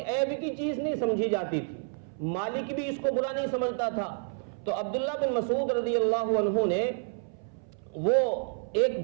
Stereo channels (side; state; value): left; silent; 58 dB below the other